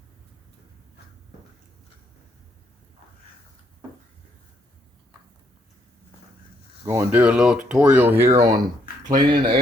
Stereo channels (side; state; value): both; normal; correlation 0.72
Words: Going to do a little tutorial here on cleaning the